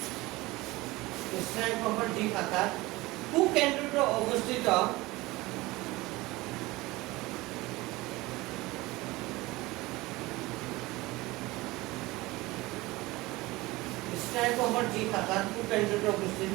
স্নায়ু কোষৰ যি শাখাত কুকেন্দ্ৰটো অৱস্থিত স্নায়ু কোষৰ যি শাখাত কুকেন্দ্ৰটো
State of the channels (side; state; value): left; quieter; 20.6 dB